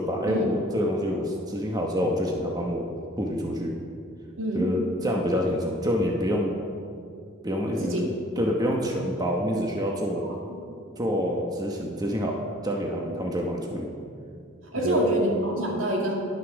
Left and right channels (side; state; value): both; normal; correlation 0.51